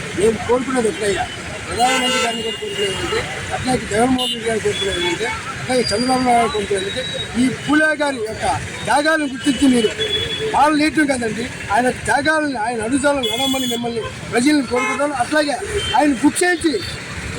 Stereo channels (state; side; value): identical; both; correlation 1.00